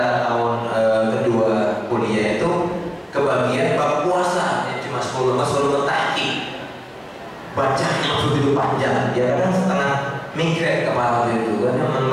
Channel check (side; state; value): both; identical; correlation 1.00